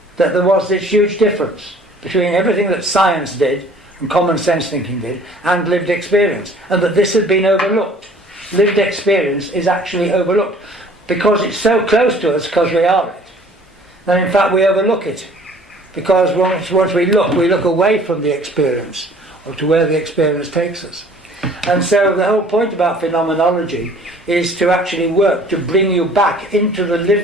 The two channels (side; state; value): both; normal; correlation 0.52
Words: that there was this huge difference between everything that science did and common sense thinking did and lived experience, and that this had been overlooked. Lived experience is actually overlooked because it's so close to us because we are it. And in fact we overlook it because once we look away from the experience or to where the experience takes us. And so the whole point about phenomenology is to actually work to bring you back into the